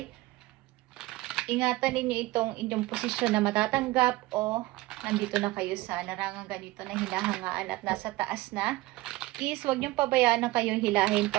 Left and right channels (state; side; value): quieter; left; 19.5 dB